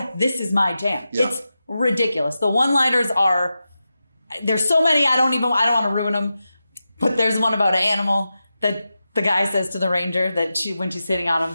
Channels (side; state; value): both; inverted; correlation -0.91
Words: this is my jam. Yeah. It's ridiculous. The one-liners are, there's so many, I don't want to ruin them, but there's one about an animal that the guy says to the ranger that when she's sitting on him